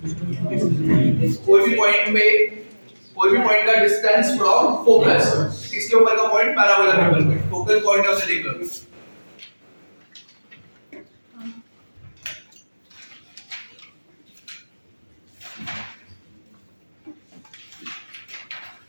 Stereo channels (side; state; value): both; inverted; correlation -1.00